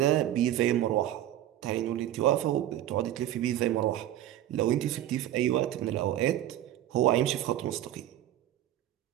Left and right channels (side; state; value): left; quieter; 12.7 dB